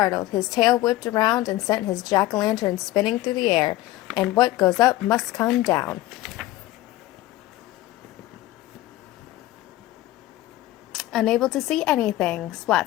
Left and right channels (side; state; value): right; quieter; 16.2 dB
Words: his tail whipped around and sent his jack-o'-lantern spinning through the air. And what goes up must come down. Unable to see anything,